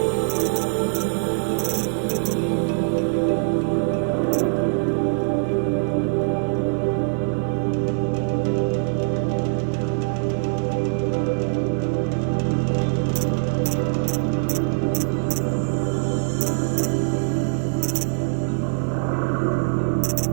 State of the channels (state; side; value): silent; left; digital silence